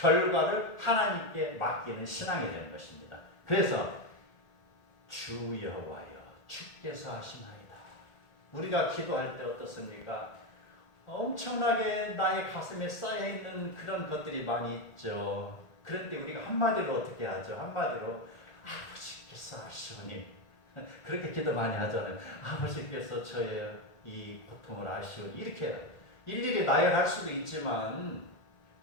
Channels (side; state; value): right; late; 1.8 ms